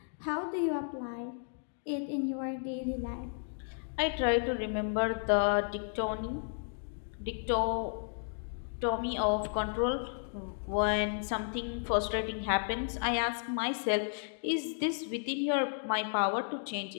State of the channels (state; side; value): silent; right; digital silence